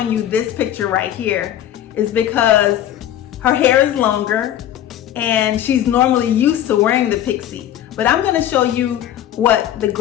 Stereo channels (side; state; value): right; quieter; 11.6 dB